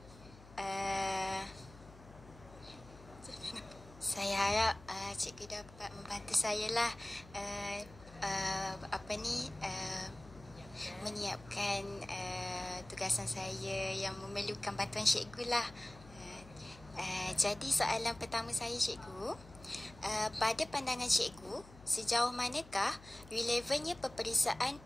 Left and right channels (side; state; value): left; noise; hum, 20 dB below the sound